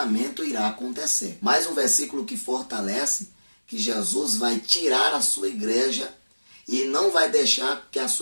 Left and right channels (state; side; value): inverted; both; correlation -1.00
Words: irá acontecer. Mais um versículo que fortalece que Jesus vai tirar a sua igreja e não vai deixar que a